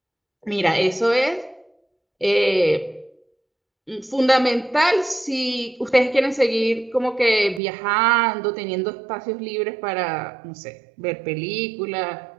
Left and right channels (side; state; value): left; drops out; at 7.6 s